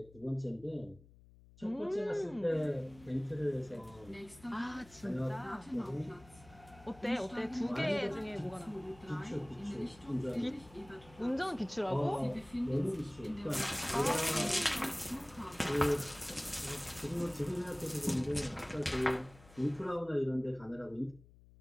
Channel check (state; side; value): noise; left; hum, 23 dB below the sound